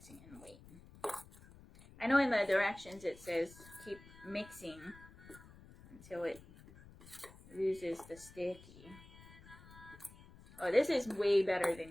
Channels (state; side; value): noise; left; rumble, 20 dB below the sound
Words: and wait. I know in the directions it says keep mixing until it loses the sticky. Oh, this is way better